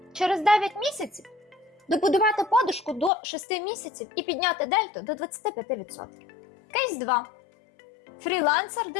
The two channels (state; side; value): drops out; right; at 3.1 s